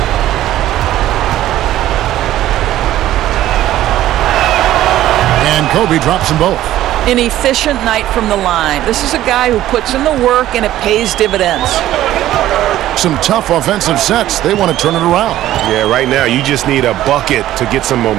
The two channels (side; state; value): left; quieter; 13.7 dB